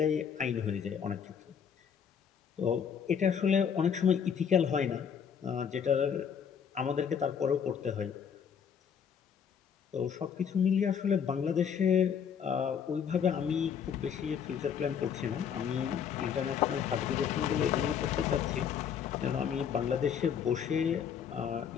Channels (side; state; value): right; quieter; 7.6 dB